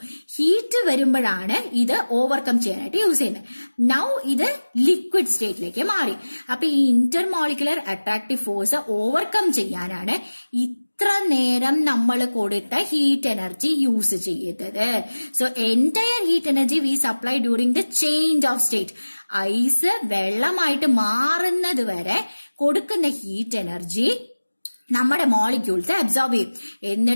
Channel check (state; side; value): inverted; both; correlation -1.00